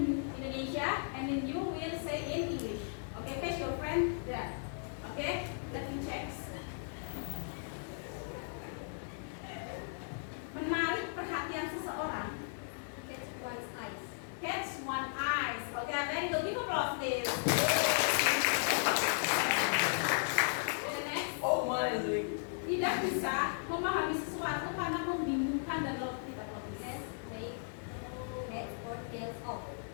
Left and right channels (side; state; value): right; silent; digital silence